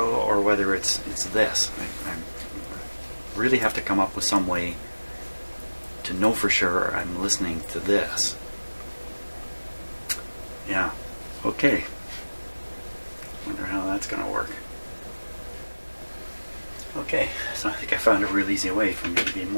or whether it's this. I really have to come up with some way to know for sure I'm listening to this. Yeah, okay. Wonder how that's going to work. Okay, so I think I found a real easy way for me to be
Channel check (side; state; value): both; inverted; correlation -1.00